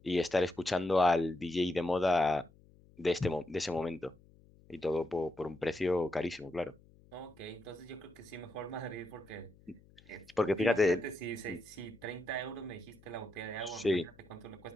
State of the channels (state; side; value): noise; left; hum, 26 dB below the sound